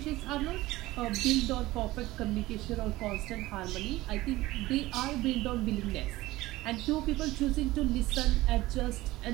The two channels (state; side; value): quieter; left; 18.2 dB